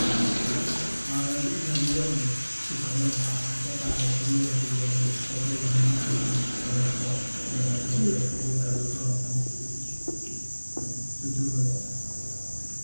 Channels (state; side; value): inverted; both; correlation -1.00